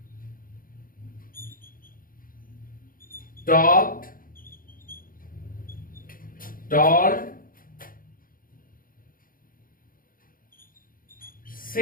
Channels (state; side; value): late; right; 0.41 ms